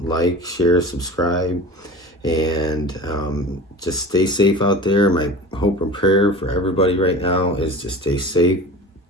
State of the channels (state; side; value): normal; both; correlation 0.35